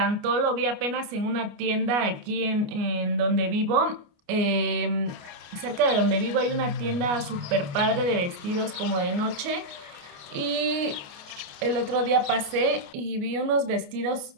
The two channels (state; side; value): late; left; 29 ms